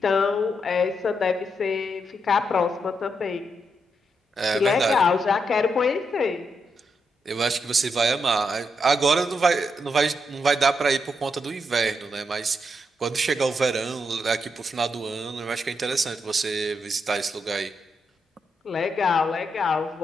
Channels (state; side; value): normal; both; correlation 0.82